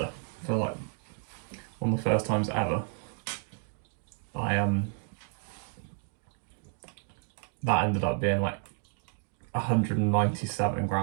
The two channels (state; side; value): silent; left; 57 dB below the other